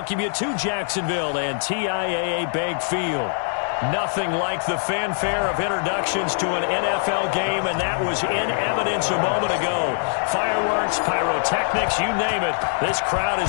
you to Jacksonville and TIAA Bank Field. Nothing like the fanfare of introductions to an NFL game, and that was in evidence a moment ago. Fireworks, pyrotechnics, you name it. This crowd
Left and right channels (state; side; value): silent; right; digital silence